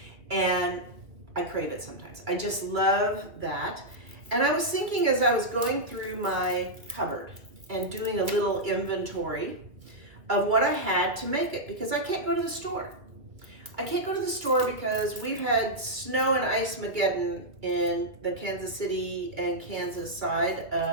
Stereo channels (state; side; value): late; left; 2.1 ms